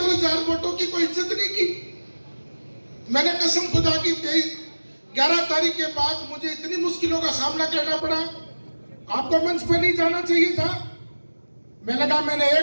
वोटों की कोई इज्जत नहीं की। मैंने कसम खुदा की 11 तारीख के बाद मुझे इतनी मुश्किलों का सामना करना पड़ा, आपको मंच पे नहीं जाना चाहिए था। मैंने कहा मैंने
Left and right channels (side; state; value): both; inverted; correlation -1.00